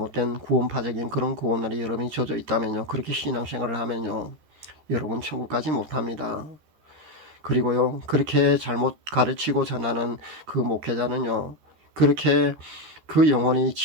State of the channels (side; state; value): left; late; 13 ms